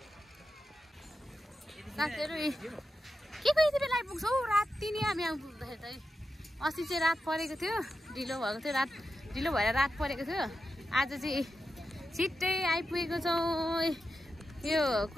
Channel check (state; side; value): normal; both; correlation 0.89